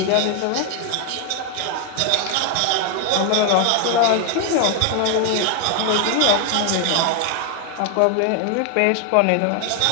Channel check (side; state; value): both; different; correlation 0.01